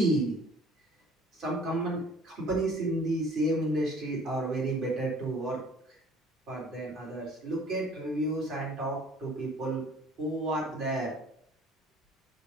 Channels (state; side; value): normal; both; correlation 0.52